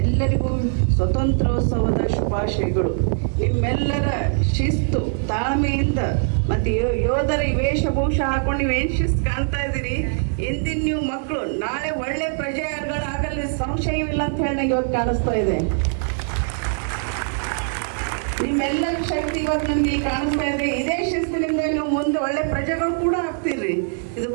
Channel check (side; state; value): left; silent; 61 dB below the other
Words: ಎಲ್ಲರಿಗೂ ಸ್ವತಂತ್ರೋತ್ಸವದ ಶುಭಾಶಯಗಳು. ನಿಮ್ಮೆಲ್ಲರ ಶಿಸ್ತು, ತಾಳ್ಮೆಯಿಂದ ಮತ್ತೆ ಯೋಧರ ವೇಷಭೂಷ ಹಾಕೊಂಡು ನೀವೇನು ಶಿಸ್ತು ಕಾಣ್ತಾ ಇದ್ದೀರಿ. ಇಂದಿನ ನೀವು ಮಕ್ಕಳು ನಾಳೆ ಒಳ್ಳೆ ಪ್ರಜೆಗಳಾಗಲ್ಲ ಸಂಶಯವಿಲ್ಲ ಅಂತ ಹೇಳಿ ನಂಗೆ ಇವತ್ತು ಕಾಣಿಸ್ತಾ ಇದೆ. ನಿಮ್ಮೆಲ್ಲರ ಶಕ್ತಿ ಇವತ್ತು ನಮ್ಗೆ ಕಾಣಿಸ್ತಾ ಇದೆ. ಇದೇ ಶಿಸ್ತಿನಿಂದ ನೀವು ಮುಂದೆ ಒಳ್ಳೆ ಪ್ರಜೆಗಳು ಕೂಡ ಆಗ್ತೀರಿ. ಇದು